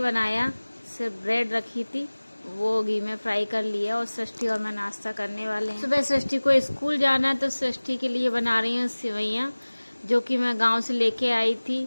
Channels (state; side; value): inverted; both; correlation -1.00